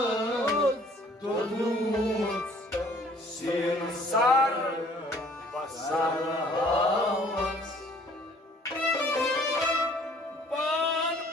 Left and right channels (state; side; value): normal; both; correlation 0.56